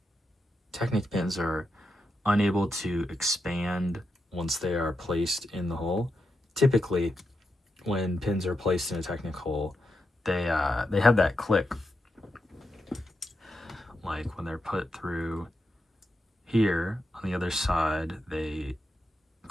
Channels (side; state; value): both; normal; correlation 0.86